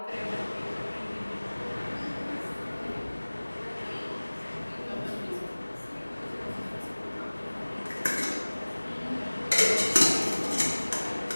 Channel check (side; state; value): both; inverted; correlation -1.00